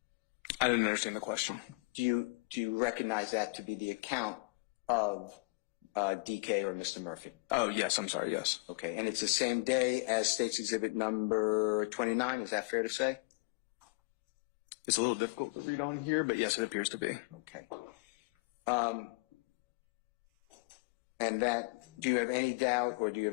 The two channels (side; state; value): right; quieter; 30.2 dB